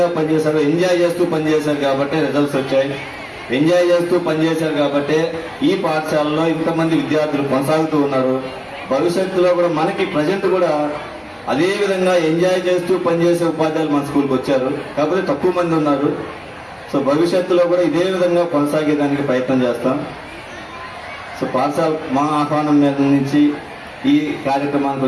పనిచేశారు, ఎంజాయ్ చేస్తూ పనిచేశారు కాబట్టి రిజల్ట్స్ వచ్చాయి. ఎంజాయ్ చేస్తూ పనిచేశారు కాబట్టి ఈ పాఠశాలలో ఇంతమంది విద్యార్థులు కొనసాగుతూ ఉన్నారు. భవిష్యత్తులో కూడా మనకి ప్రజెంట్ కూడా అదే విధంగా ఎంజాయ్ చేస్తూ పనిచేసే ఉపాధ్యాయులు మన స్కూల్కి వచ్చారు, కాకపోతే తక్కువ మంది ఉన్నారు. సో భవిష్యత్తులో కూడా ఇదే విధంగా కొనసాగేదానికి ప్రయత్నం చేస్తాం. సో పాఠశాల మా ఆహ్వానం మీద నుంచి ఈ కార్యక్రమానికి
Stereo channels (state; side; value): identical; both; correlation 1.00